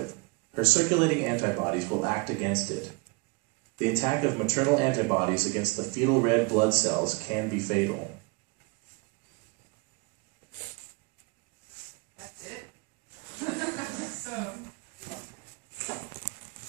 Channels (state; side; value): quieter; left; 29.1 dB